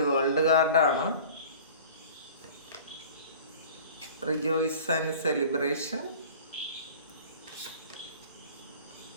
വേൾഡ് കാർഡാണ്. Rejoice and celebration,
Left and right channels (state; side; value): inverted; both; correlation -0.43